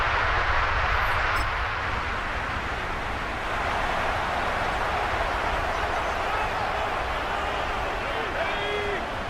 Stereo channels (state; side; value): identical; both; correlation 1.00